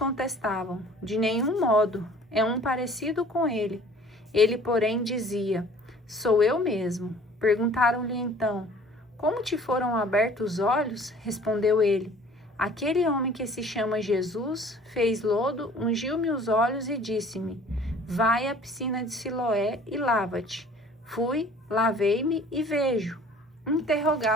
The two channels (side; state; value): both; normal; correlation 0.50